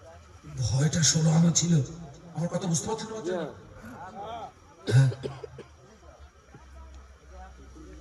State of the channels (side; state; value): both; identical; correlation 1.00